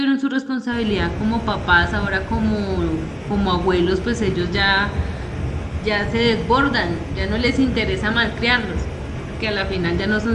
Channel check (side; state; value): both; identical; correlation 1.00